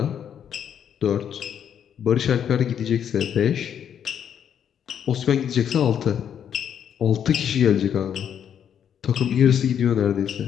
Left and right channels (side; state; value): right; quieter; 8.8 dB